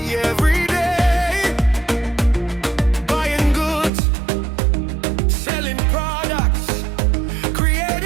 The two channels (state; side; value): drops out; left; at 3.9 s